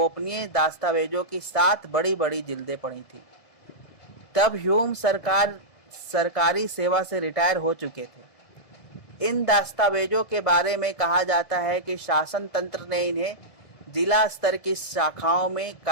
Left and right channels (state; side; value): late; right; 1.7 ms